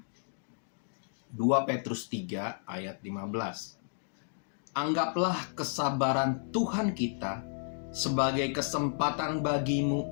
2 Petrus 3 ayat 15. Anggaplah kesabaran Tuhan kita sebagai kesempatan bagimu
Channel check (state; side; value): silent; right; digital silence